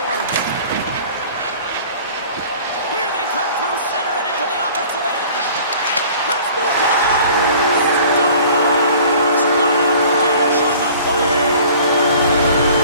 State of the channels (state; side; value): inverted; both; correlation -0.48